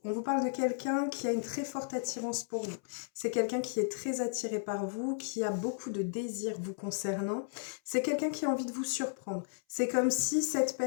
on vous parle de quelqu'un qui a une très forte attirance pour vous. C'est quelqu'un qui est très attiré par vous, qui a beaucoup de désirs vous concernant. C'est quelqu'un qui a envie de vous surprendre. C'est comme si cette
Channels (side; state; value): right; silent; 55 dB below the other